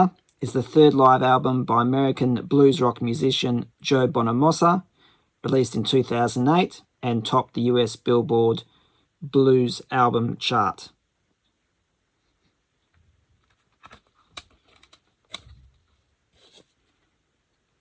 is the third live album by American blues rock musician Joe Bonamassa, released in 2008 and topped the US Billboard Blues Album chart.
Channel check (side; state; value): both; identical; correlation 1.00